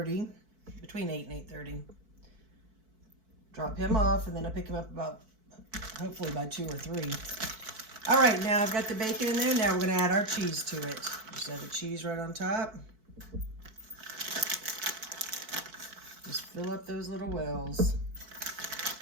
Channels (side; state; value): left; late; 4.6 ms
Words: between 8 and 8:30. Drop him off, and then I pick him up about, hopefully by 2 or 3. All right, now I've got the bacon in there. Now we're going to add our cheese to it. Just add the cheese right on top. Just fill up those little wells.